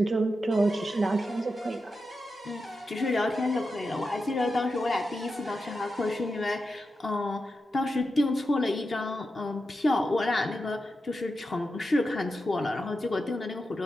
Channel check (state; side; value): normal; both; correlation 0.89